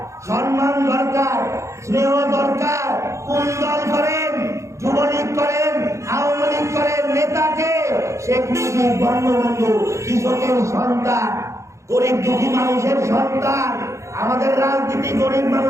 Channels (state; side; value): late; left; 0.14 ms